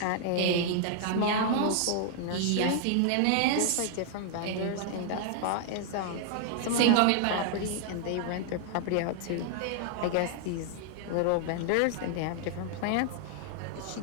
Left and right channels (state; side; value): different; both; correlation 0.00